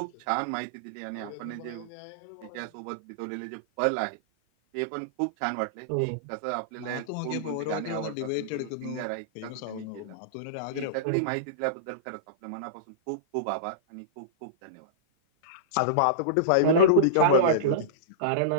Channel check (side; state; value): both; different; correlation -0.04